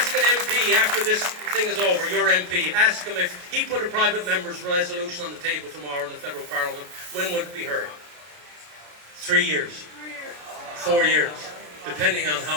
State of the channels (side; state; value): left; late; 33 ms